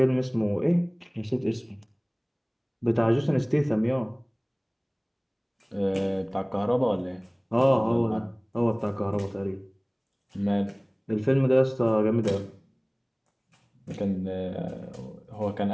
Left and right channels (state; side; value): identical; both; correlation 1.00